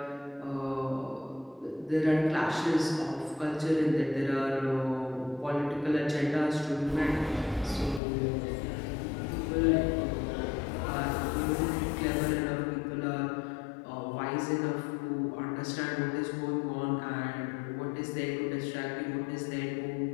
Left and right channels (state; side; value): drops out; right; at 8.0 s